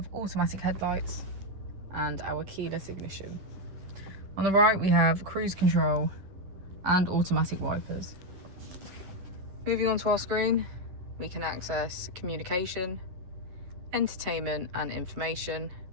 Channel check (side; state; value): left; late; 10 ms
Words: automatic headlights and our keyless ignition. On the right, we have cruise control and automatic wipers. Moving on to our screen, we can access communication, entertainment and information,